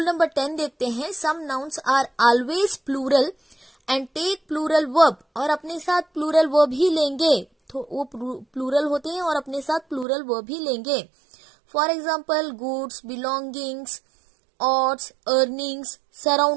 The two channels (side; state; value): left; drops out; at 10.1 s